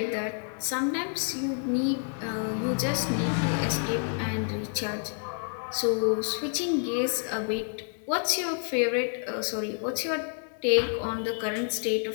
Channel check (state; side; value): silent; right; 56 dB below the other